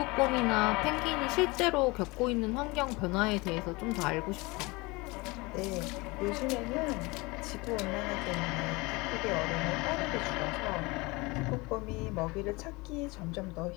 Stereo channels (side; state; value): right; quieter; 24.6 dB